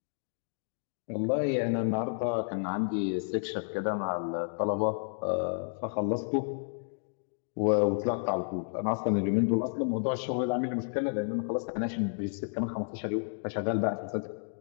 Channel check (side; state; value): right; silent; digital silence